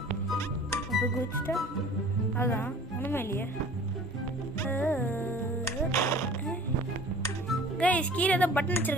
அப்போ குதிச்சுட்டா அதான் ஒன்றுமே இல்லையே. கைஸ் கீழே தான் பட்டன்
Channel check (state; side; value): normal; both; correlation 0.46